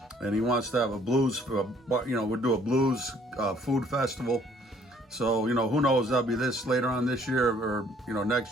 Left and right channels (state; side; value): normal; both; correlation 0.61